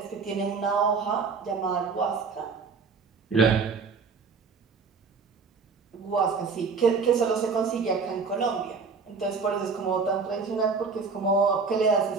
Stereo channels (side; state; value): left; quieter; 5.0 dB